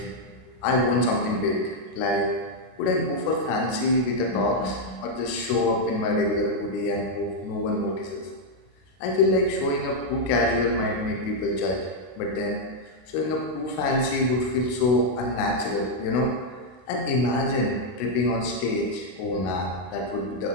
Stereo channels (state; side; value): late; right; 32 ms